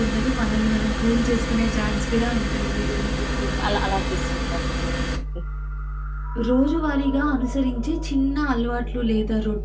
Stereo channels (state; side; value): identical; both; correlation 1.00